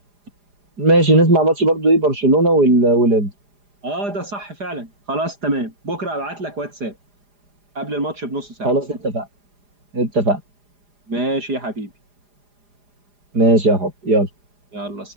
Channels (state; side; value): late; left; 4.9 ms